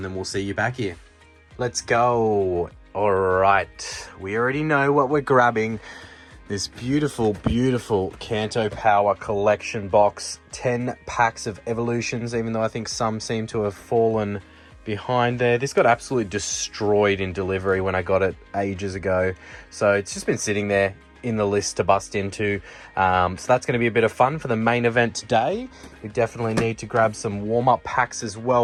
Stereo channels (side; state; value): both; identical; correlation 1.00